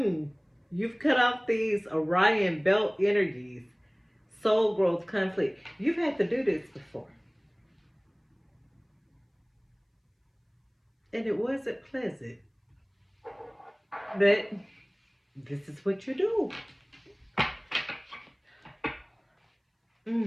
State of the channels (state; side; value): identical; both; correlation 1.00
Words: cut off these Orion belt energies, soul growth, conflict. You've had to do this before. And it wasn't pleasant. But this is what you do.